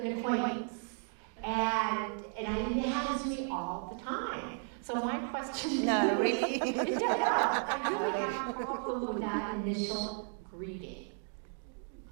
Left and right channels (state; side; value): silent; left; 55 dB below the other